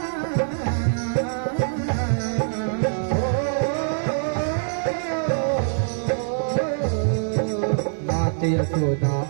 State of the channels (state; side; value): silent; left; digital silence